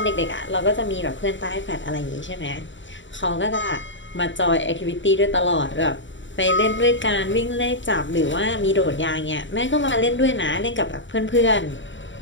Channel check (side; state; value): right; late; 0.54 ms